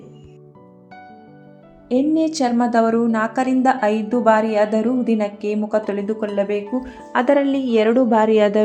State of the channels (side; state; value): both; identical; correlation 1.00